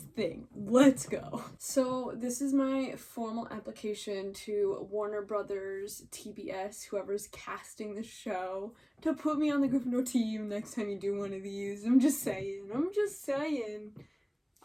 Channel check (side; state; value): both; identical; correlation 1.00